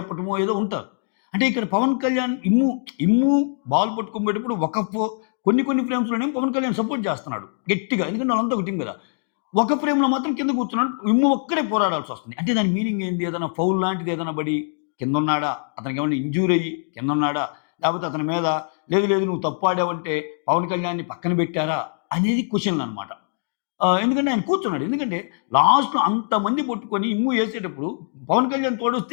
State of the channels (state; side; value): silent; right; digital silence